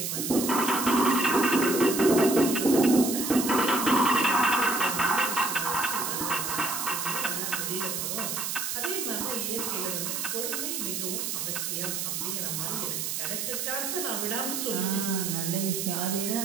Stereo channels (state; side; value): noise; right; hiss, 2 dB below the sound